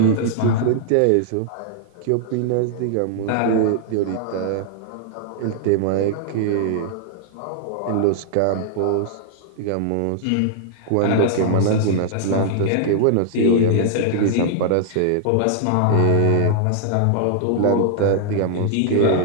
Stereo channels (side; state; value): both; different; correlation -0.01